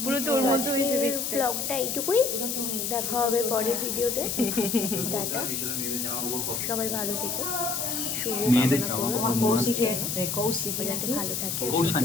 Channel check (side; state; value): left; noise; hiss, 2 dB below the sound